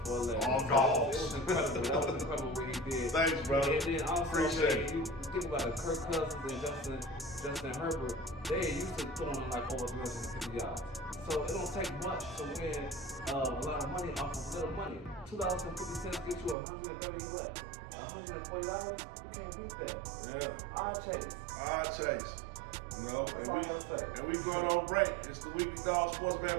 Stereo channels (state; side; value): drops out; left; at 16.6 s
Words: 4-legger. Oh, no. It was incredible. That was incredible what he did. Thanks, brother. And then also, appreciate it. You think about it, Kirk Cousins and Justin Herbert, they used to throwing like over 350 yards. So it don't take much to win a lot of money off of little money. $2.50 get you $130 what? $140? You can't beat that. Yeah. Odd chase. You know, and we going on break. It's the Weekly Dog Sports